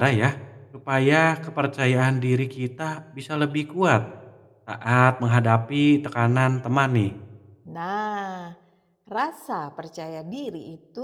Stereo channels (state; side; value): identical; both; correlation 1.00